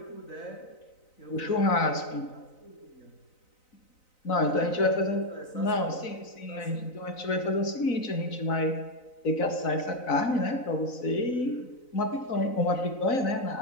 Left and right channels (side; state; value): right; late; 4.0 ms